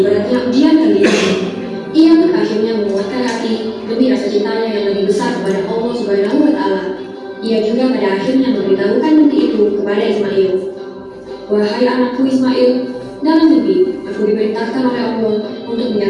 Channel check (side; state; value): both; identical; correlation 1.00